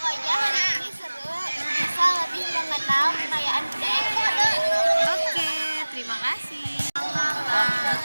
hari ini seru. Bisa lebih mengenal kekayaan budaya. Oke, terima kasih.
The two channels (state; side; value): inverted; both; correlation -1.00